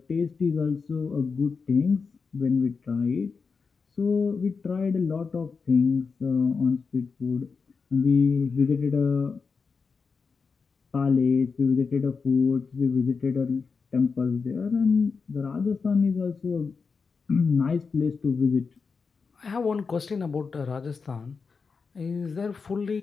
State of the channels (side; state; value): right; quieter; 5.1 dB